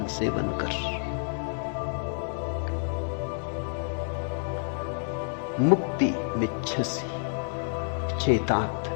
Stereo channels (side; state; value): right; silent; digital silence